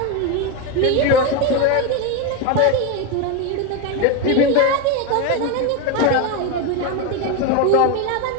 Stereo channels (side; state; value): both; different; correlation 0.03